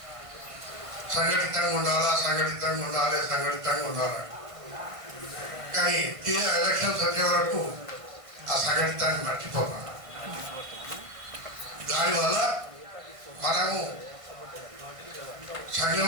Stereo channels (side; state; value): left; late; 1.5 ms